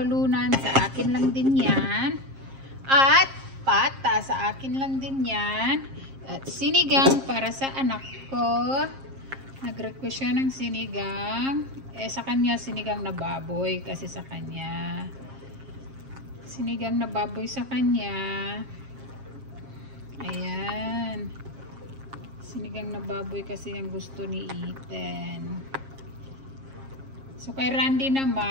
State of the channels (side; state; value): left; late; 7.5 ms